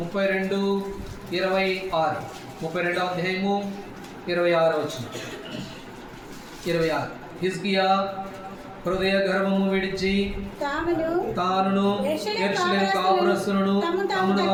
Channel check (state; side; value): identical; both; correlation 1.00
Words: 32వ అధ్యాయము 26వ వచనం. 26. హిజ్కియా హృదయ గర్వము విడిచి తానును యెరూషలేము కాపురస్తులను తమను